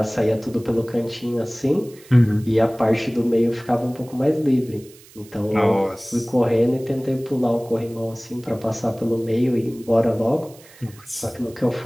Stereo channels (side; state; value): right; noise; hiss, 24 dB below the sound